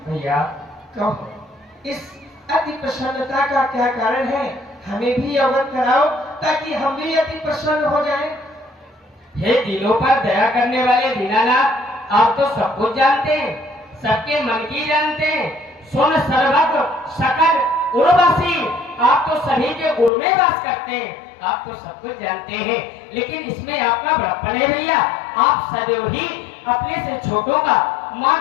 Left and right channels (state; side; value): drops out; right; at 20.1 s